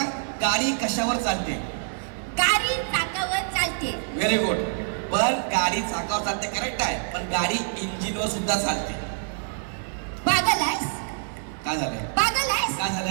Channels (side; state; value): left; silent; digital silence